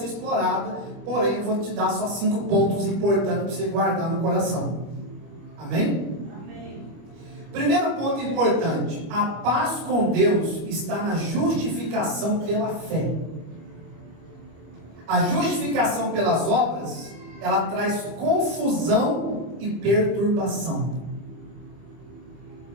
explorada, porém eu vou te dar só 5 pontos importantes para você guardar no coração. Amém? Amém. Primeiro ponto importante: a paz com Deus está na justificação pela fé. A justificação pelas obras, ela traz confusão e perturbação.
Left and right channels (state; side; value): late; left; 25 ms